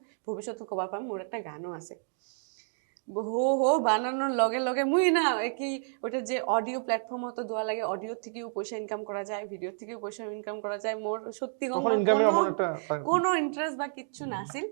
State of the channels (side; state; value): left; silent; digital silence